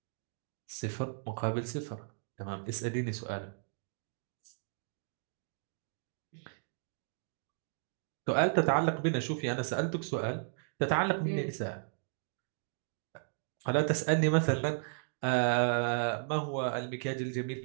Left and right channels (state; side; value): silent; left; digital silence